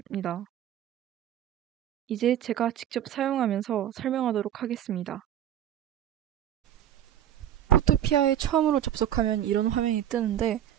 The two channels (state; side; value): quieter; left; 11.0 dB